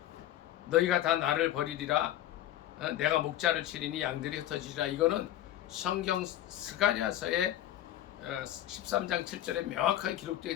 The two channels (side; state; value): right; quieter; 13.0 dB